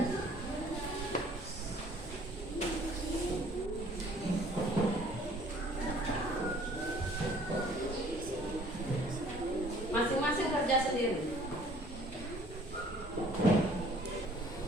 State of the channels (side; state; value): both; normal; correlation 0.55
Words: Masing-masing kerja sendiri.